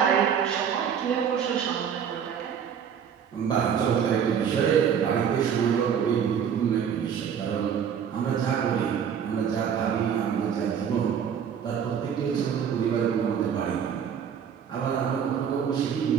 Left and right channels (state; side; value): quieter; left; 7.9 dB